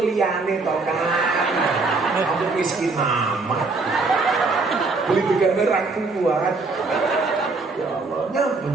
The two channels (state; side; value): quieter; left; 3.8 dB